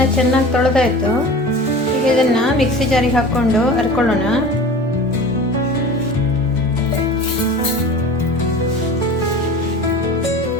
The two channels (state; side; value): normal; both; correlation 0.37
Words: ಚೆನ್ನಾಗಿ ತೊಳೆದಾಯ್ತು. ಈಗ ಇದನ್ನ ಮಿಕ್ಸಿ ಜಾರಿಗೆ ಹಾಕ್ಕೊಂಡು ಹರ್ಕೊಳ್ಳೋಣ.